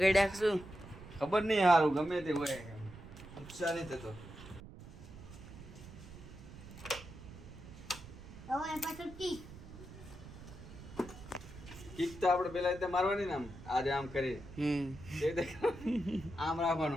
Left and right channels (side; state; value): right; noise; rumble, 15 dB below the sound